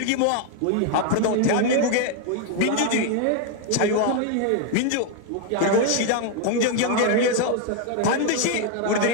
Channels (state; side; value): different; both; correlation 0.01